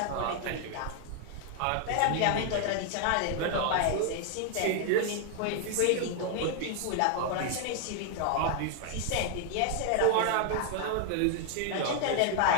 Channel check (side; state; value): both; different; correlation 0.00